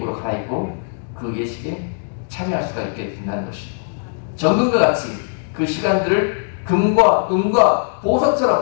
갈아입고 그 예식에 참여할 수가 있게 된다는 것입니다. 정금과 같이 그 시간들을 금과 은과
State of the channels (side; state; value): right; silent; 66 dB below the other